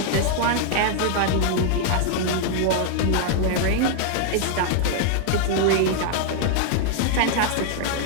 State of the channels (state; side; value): different; both; correlation 0.00